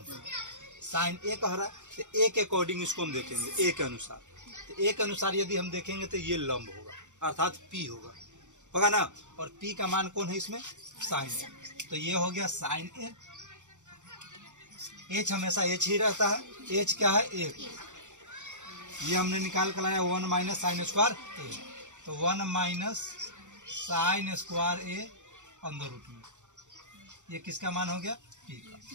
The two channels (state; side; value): late; left; 0.85 ms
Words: साइन ए कह रहा है तो ए के अकॉर्डिंग इसको हम देखेंगे, ए के अनुसार। तो ए के अनुसार यदि हम देखेंगे तो ये लंब होगा, अर्थात p होगा ना। और p का मान कौन है इसमें, साइन ए, तो ये हो गया साइन ए। h हमेशा h ही रहता है, h क्या है, 1, ये हमने निकाल कर लाया 1 - साइन स्क्वायर a, तो 1 - साइन स्क्वायर a अंदर रूट में, ये किसका मान हो गया, p का।